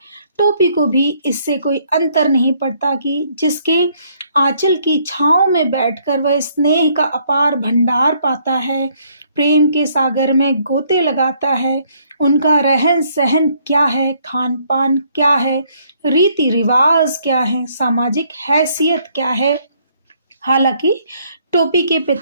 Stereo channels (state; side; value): inverted; both; correlation -0.67